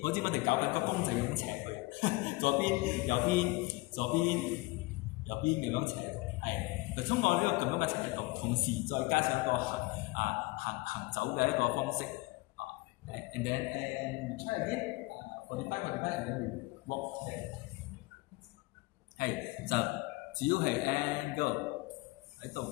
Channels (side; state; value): right; quieter; 23.0 dB